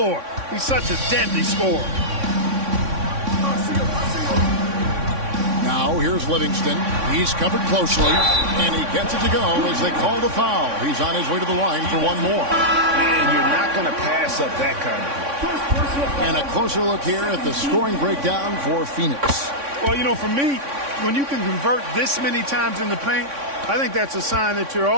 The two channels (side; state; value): left; late; 3.6 ms